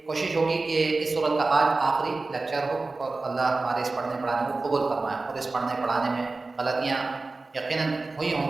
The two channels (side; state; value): left; quieter; 3.5 dB